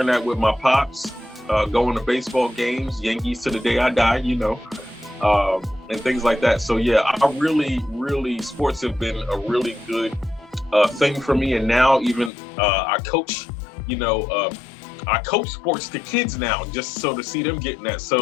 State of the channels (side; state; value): right; drops out; at 12.3 s